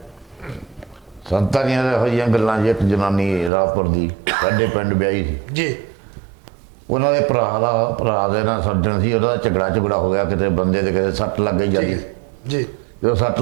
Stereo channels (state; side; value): drops out; left; at 3.5 s